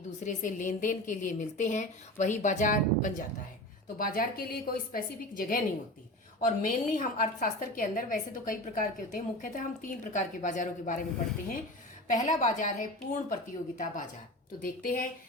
दूसरे से लेन देन के लिए मिलते हैं, वही बाजार बन जाता है। तो बाजार के लिए कोई स्पेसिफिक जगह नहीं होती। और मेनली हम अर्थशास्त्र के अंदर, वैसे तो कई प्रकार के होते हैं, मुख्यतः हम 3 प्रकार के बाजारों के बारे में पढ़ते हैं। पहला बाजार है पूर्ण प्रतियोगिता बाजार। तो देखते हैं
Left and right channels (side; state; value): both; normal; correlation 0.31